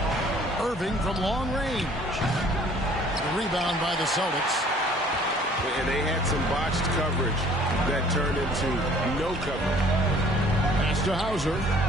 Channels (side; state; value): both; normal; correlation 0.55